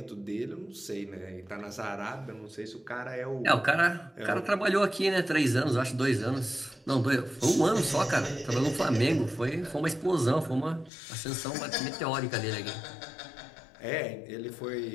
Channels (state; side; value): drops out; right; at 10.9 s